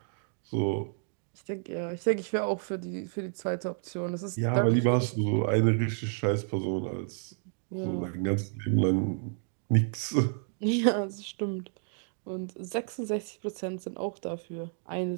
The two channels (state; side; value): silent; left; digital silence